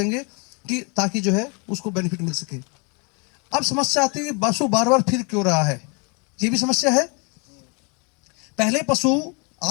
कि ताकि जो है उसको बेनिफिट मिल सके। अब समस्या आती है कि पशु बार बार फिर क्यों रहा है, ये भी समस्या है। पहले पशु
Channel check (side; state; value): right; quieter; 33.0 dB